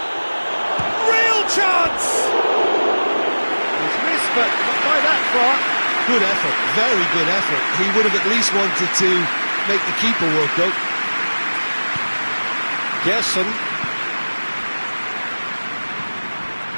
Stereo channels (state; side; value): inverted; both; correlation -1.00